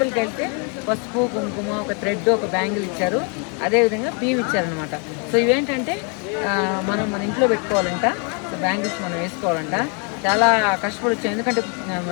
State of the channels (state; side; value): quieter; right; 37.3 dB